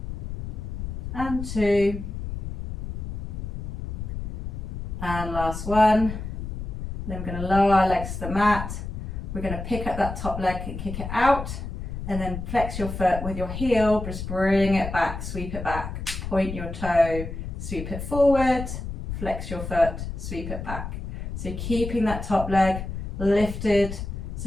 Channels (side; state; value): left; noise; rumble, 6 dB below the sound